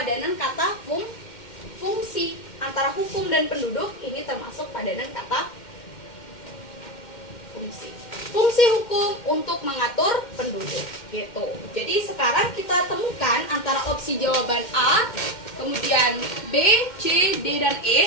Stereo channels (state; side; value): late; right; 2.1 ms